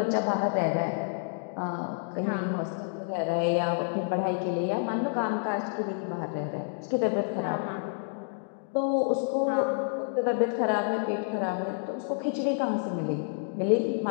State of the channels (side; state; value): right; silent; digital silence